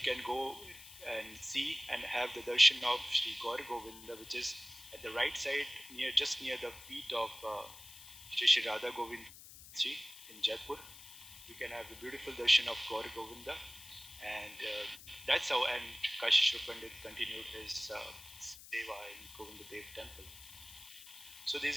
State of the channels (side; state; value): left; noise; hiss, 16 dB below the sound